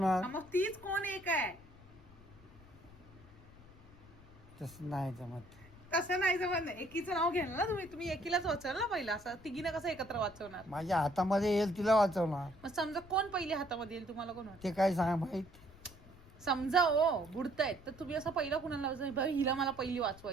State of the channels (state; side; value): noise; left; rumble, 22 dB below the sound